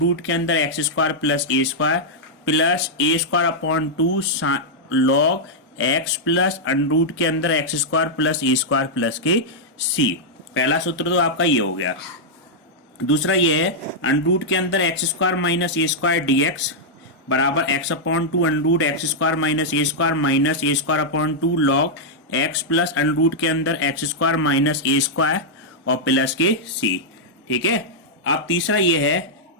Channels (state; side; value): normal; both; correlation -0.06